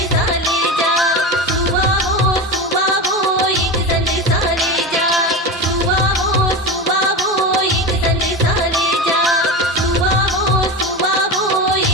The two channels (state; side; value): normal; both; correlation 0.23